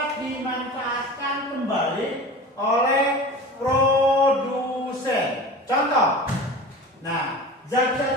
dimanfaatkan kembali oleh produsen. Contoh. Nah,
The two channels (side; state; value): both; normal; correlation 0.35